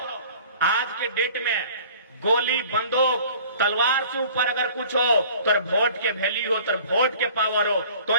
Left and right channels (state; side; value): inverted; both; correlation -0.48